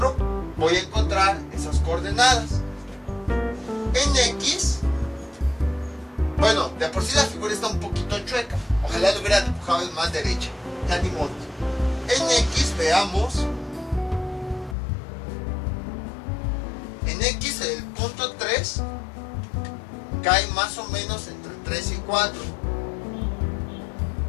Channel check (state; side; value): drops out; right; at 14.8 s